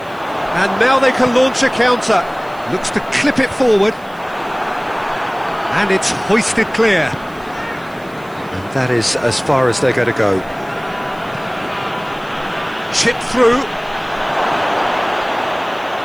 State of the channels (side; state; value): right; noise; hiss, 27 dB below the sound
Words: And now they can launch a counter. Looks to clip it forward. And it's hoisted clear. And that is as far as they're going to go. Chip through.